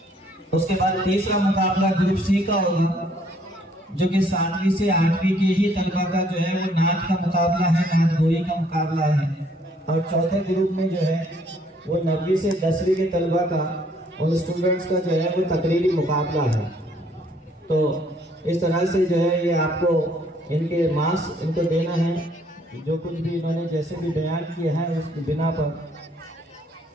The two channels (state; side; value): normal; both; correlation 0.64